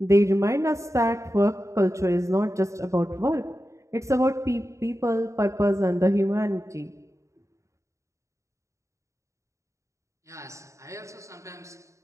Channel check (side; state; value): left; late; 0.15 ms